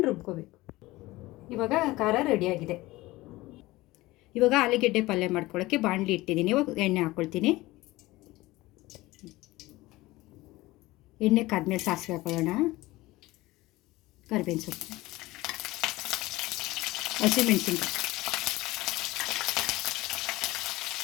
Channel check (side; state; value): right; quieter; 19.3 dB